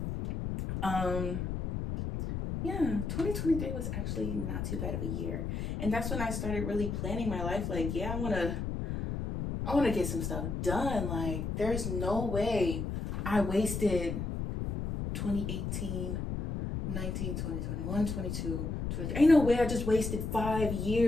Yeah, 2023 was actually not too bad of a year. And that's when I started really planning my life. Like, yeah, I want to get some stuff done. Like, there's no way I wasted 2018, 19, 20, 21, 22, 23. Ain't no way I just wasted 5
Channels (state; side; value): noise; left; rumble, 3 dB below the sound